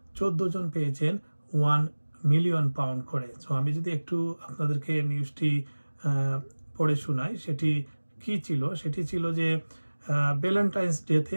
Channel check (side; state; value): both; inverted; correlation -1.00